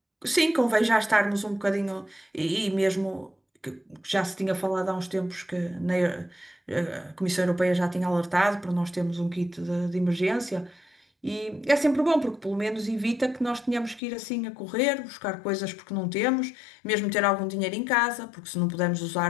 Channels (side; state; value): right; drops out; at 14.0 s